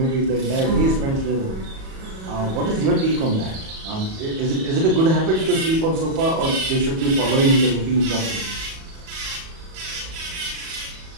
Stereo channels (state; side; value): late; left; 37 ms